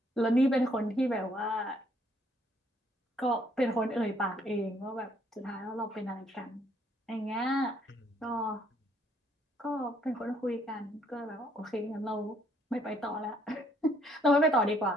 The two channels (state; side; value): normal; both; correlation 0.66